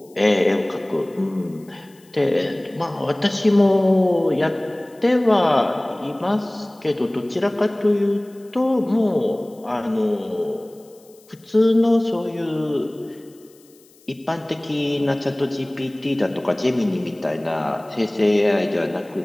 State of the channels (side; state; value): left; noise; hiss, 29 dB below the sound